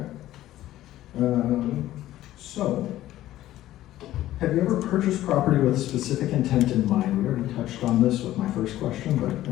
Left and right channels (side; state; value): right; quieter; 14.3 dB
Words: So, have you ever purchased property with a specific intent in mind? We already touched on this with my first question, but